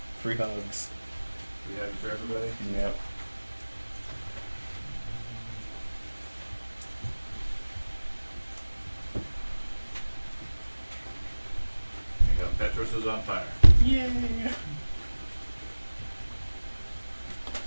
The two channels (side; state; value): both; inverted; correlation -1.00